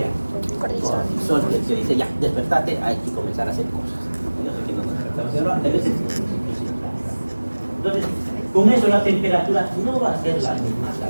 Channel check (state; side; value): inverted; both; correlation -1.00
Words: Cortisol, que dice, ya, despertate, hay que comenzar a hacer cosas. Y no sé quién nos despertamos, pero antes veces. Entonces, con eso la temperatura no va a ser la misma,